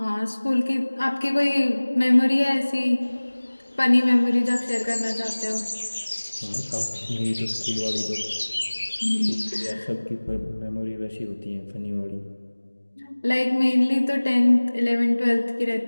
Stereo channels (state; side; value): inverted; both; correlation -1.00